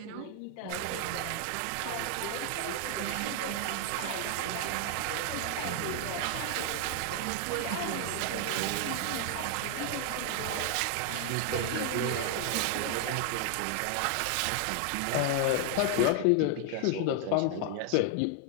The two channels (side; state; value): both; different; correlation 0.00